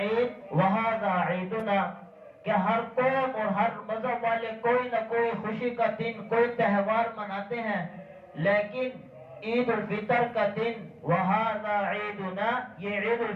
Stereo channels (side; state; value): both; identical; correlation 1.00